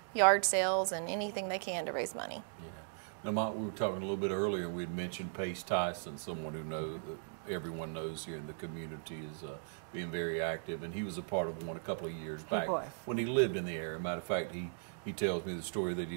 yard sales and anything they can to raise money. Yeah. Now, Mott, we were talking a little bit earlier, we had mentioned Pace Tyson, someone who everyone knows here in the community is being very active, and he was a part of one a couple of years back when he lived in the area. Matter of fact, he tells me the story that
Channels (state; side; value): silent; left; digital silence